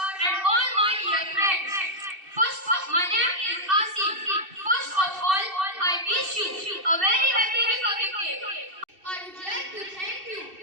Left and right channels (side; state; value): left; late; 2.7 ms